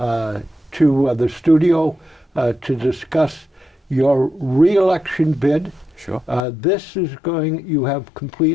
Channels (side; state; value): right; drops out; at 6.4 s